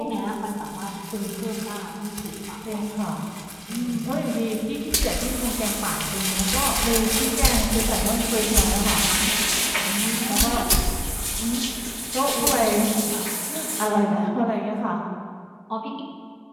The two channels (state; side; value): identical; both; correlation 1.00